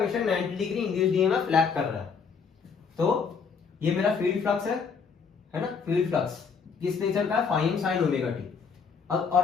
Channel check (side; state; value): right; quieter; 5.8 dB